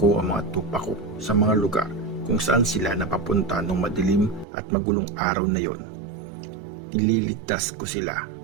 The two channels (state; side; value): drops out; left; at 4.5 s